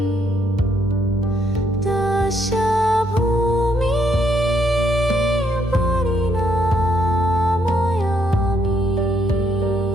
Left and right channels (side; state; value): both; normal; correlation 0.72